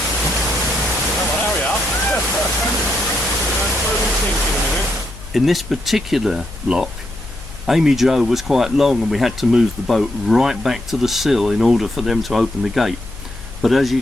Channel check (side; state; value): left; noise; hum, 16 dB below the sound